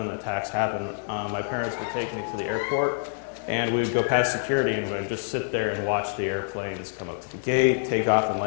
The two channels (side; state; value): right; silent; digital silence